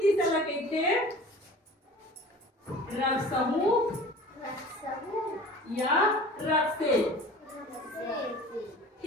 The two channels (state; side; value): normal; both; correlation 0.42